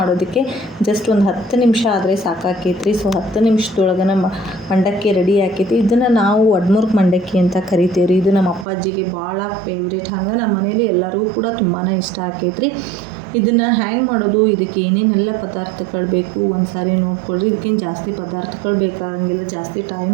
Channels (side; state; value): left; drops out; at 8.7 s